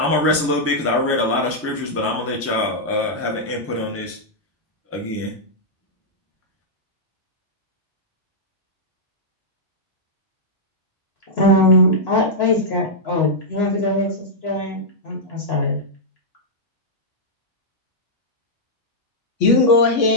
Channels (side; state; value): both; normal; correlation -0.08